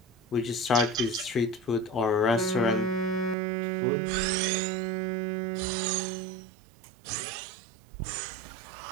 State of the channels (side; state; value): left; drops out; at 3.4 s